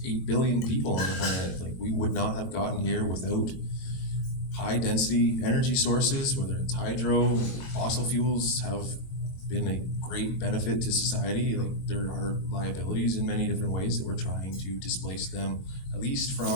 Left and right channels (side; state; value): right; late; 23 ms